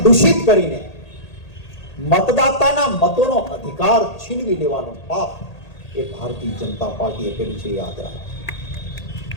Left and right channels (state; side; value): late; right; 1.8 ms